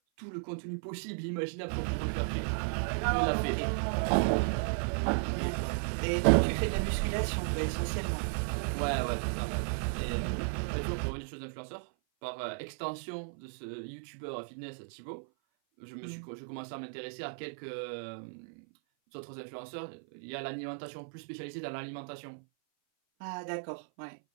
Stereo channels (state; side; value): silent; left; 55 dB below the other